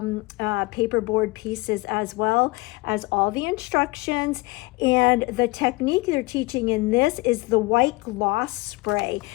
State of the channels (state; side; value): quieter; right; 23.1 dB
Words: paperboard pieces as well as all the instructions. And the technique they're teaching in this is the white gloss spray.